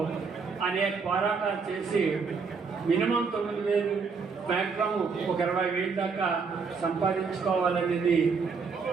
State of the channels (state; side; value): quieter; left; 5.2 dB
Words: అనేక పోరాటాలు చేసి మినిమం 9,000 మ్యాక్సిమం ఒక 20,000 దాకా సంపాదించుకోవాలనేది